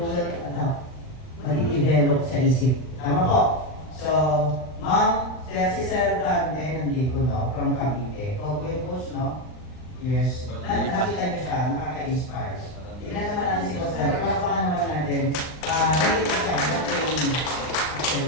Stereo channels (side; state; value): right; late; 39 ms